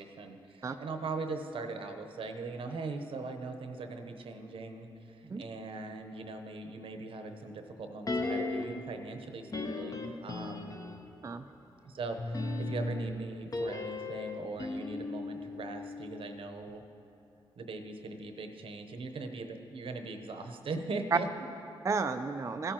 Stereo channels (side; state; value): both; normal; correlation 0.66